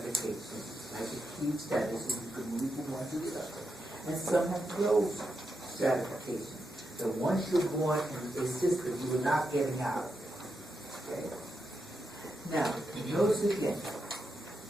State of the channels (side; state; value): both; normal; correlation 0.85